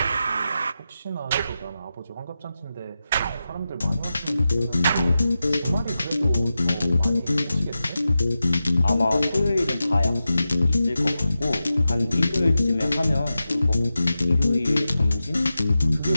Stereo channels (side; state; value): both; inverted; correlation -0.91